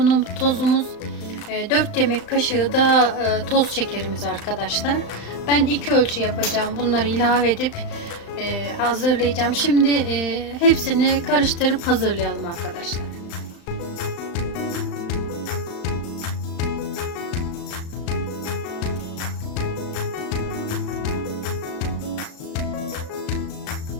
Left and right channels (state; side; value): late; right; 35 ms